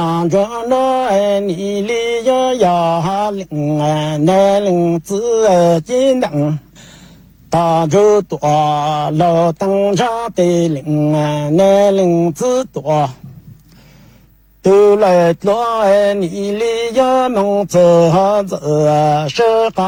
着那你里要领那领子金灯大就多老灯茶的领那领子多都来多你里要梦走走是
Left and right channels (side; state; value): both; identical; correlation 1.00